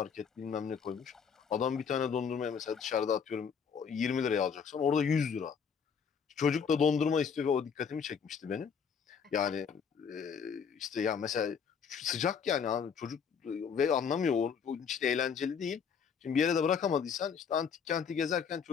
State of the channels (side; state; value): right; quieter; 6.6 dB